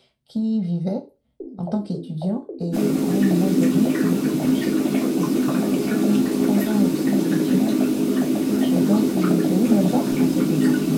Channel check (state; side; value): identical; both; correlation 1.00